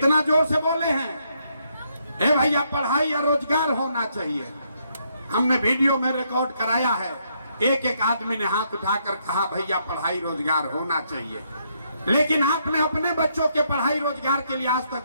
जोर से बोले हैं, ए भैया पढ़ाई या रोजगार होना चाहिए। हमने वीडियो में रिकॉर्ड कराया है, एक एक आदमी ने हाथ उठाकर कहा भैया पढ़ाई रोजगार होना चाहिए। लेकिन आपने अपने बच्चों के पढ़ाई रोजगार के लिए आज तक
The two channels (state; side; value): inverted; both; correlation -0.74